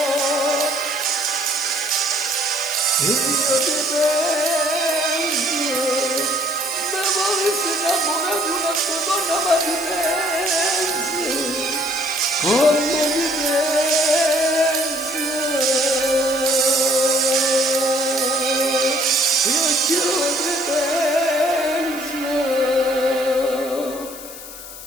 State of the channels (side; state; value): left; noise; hiss, 13 dB below the sound